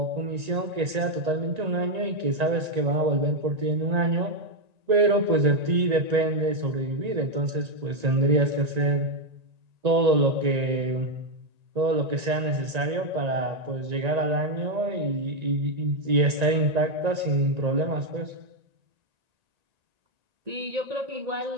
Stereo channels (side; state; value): left; late; 1.9 ms